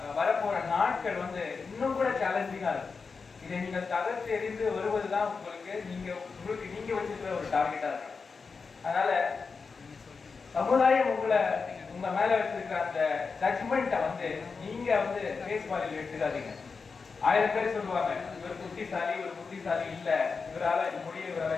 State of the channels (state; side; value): quieter; right; 4.9 dB